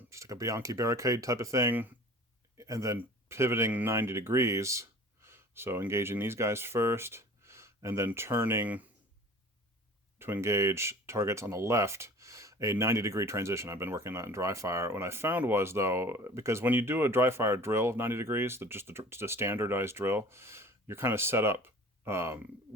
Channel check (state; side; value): normal; both; correlation 0.44